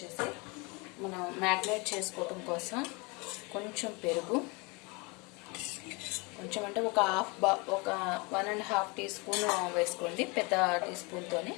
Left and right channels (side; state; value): right; quieter; 28.4 dB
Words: మనం మ్యాగ్నేట్ చేసుకోవడం కోసం కొంచెం పెరుగు, కొంచెం అంటే ఒక 1.5 టీ స్పూన్ వేసుకోండి, పెద్ద టీ స్పూన్తోనే.